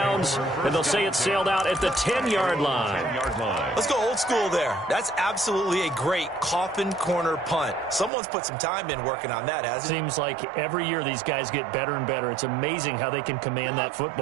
And they'll say it sailed out at the 10-yard line. Let's go old school there. That's absolutely a great coffin corner punt. Someone's put some time in working on that, hasn't it? Seems like every year these guys get better and better. It's amazing how they can command that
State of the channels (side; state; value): left; drops out; at 8.1 s